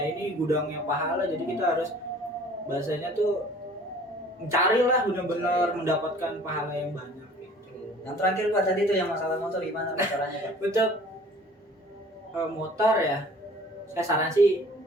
ini gudangnya pahala, jadi kita harus bahasanya tuh mencarilah benar-benar mendapatkan pahala yang banyak gitu. Yang terakhir Pak tadi tuh yang masalah motor gimana Pak caranya Pak? Untuk motor ya, saya saran sih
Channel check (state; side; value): normal; both; correlation 0.50